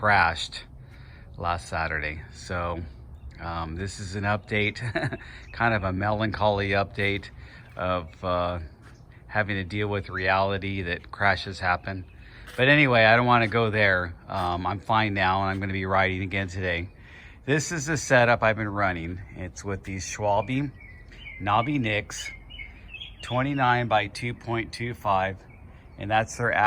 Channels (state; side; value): identical; both; correlation 1.00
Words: last Saturday. So this is an update, kind of a melancholy update of having to deal with reality that crashes happen. But anyway, I don't want to go there. I'm fine now, and I'm going to be riding again today. This is the setup I've been running. It's with these Schwalbe Nobby Nics, 29 by 2.25, and that's their